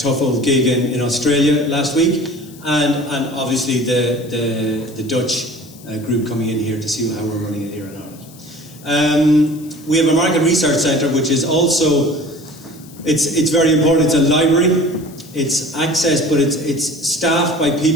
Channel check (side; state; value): left; noise; hiss, 22 dB below the sound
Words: old gig in Australia last week, and obviously the Dutch group coming in here to see how we're running it here in Ireland. We have a market research centre, which is also, it's very important. It's a library. It's access, but it's staffed by